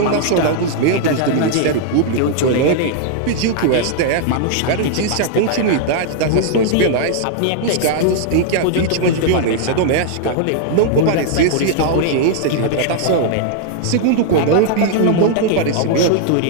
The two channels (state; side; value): different; both; correlation -0.01